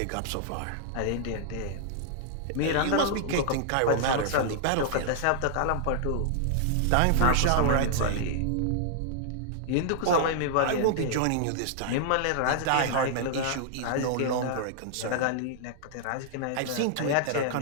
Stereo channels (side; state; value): both; different; correlation -0.01